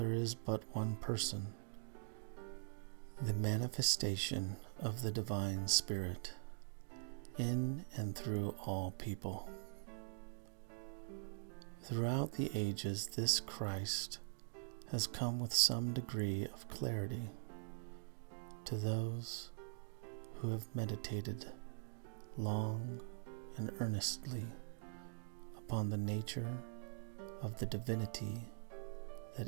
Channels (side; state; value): left; silent; digital silence